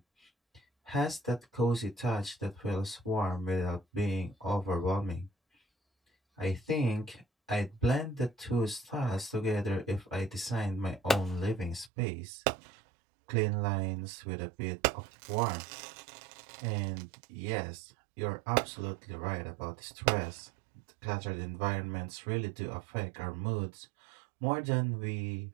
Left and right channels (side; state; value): left; drops out; at 11.9 s